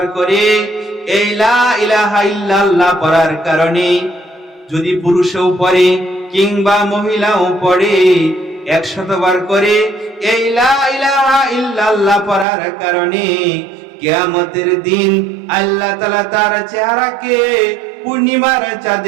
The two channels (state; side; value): drops out; left; at 12.5 s